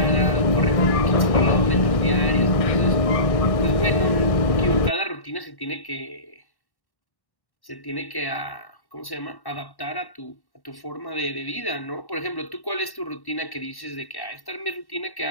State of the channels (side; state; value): right; late; 1.1 ms